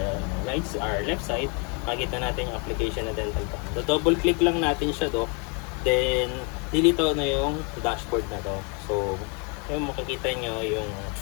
left side, makikita natin yung application na dental cam. So, double click lang natin siya do. Then, dilito na yung dashboard na to. So, yung makikita nyo yung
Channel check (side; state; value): right; quieter; 34.5 dB